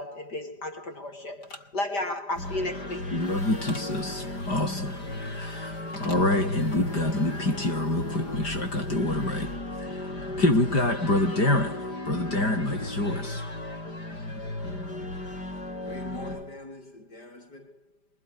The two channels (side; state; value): right; late; 5.0 ms